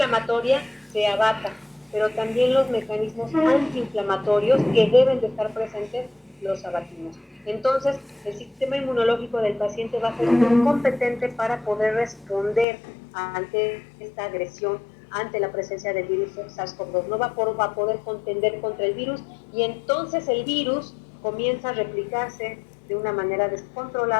se abata pero también los mecanismos antiinflamatorios que deben de estar presentes los abatimos. Entonces, el sistema inmunológico del paciente va a ser muy competente para poder responder ante esta agresión, ante la presencia del virus SARS-CoV-2. No va a poder contender contra el virus y entonces el virus comienza a replicarse de una manera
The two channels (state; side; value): drops out; right; at 12.7 s